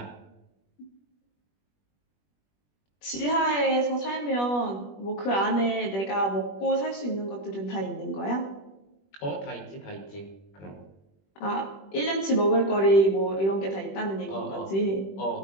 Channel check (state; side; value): late; right; 21 ms